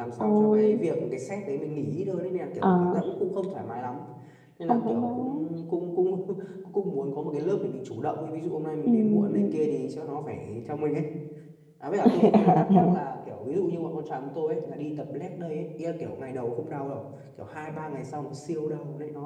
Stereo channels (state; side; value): identical; both; correlation 1.00